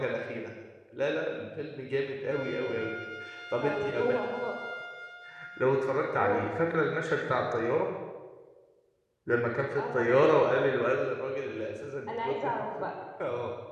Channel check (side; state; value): both; identical; correlation 1.00